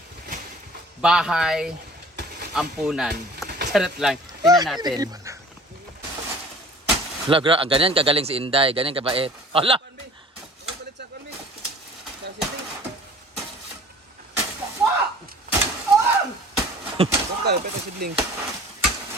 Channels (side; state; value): both; normal; correlation 0.46